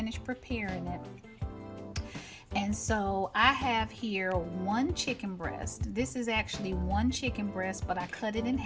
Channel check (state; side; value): identical; both; correlation 1.00